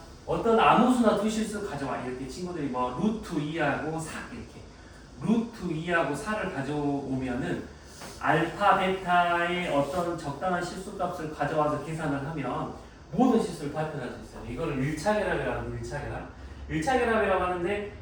어떤 아무 수나 두 실수 가져와. 이렇게 친구들이 뭐 루트 2하고 4 이렇게 루트 2하고 4를 가져오면은 알파 베타의 어떤 적당한 실수 값을 가져와서 계산을 하면 모든 실수를 다 표현할 수 있어요. 이거를 1차 결합이라고 합니다. 1차 결합. 1차 결합이라고 하는데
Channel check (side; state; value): both; identical; correlation 1.00